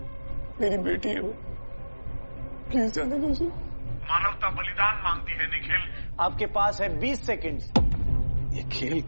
मेरी बेटी है वो, प्लीज जाने दो उसे। मानवता बलिदान मांगती है निखिल। आपके पास है 20 सेकंड। ये खेल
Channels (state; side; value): inverted; both; correlation -1.00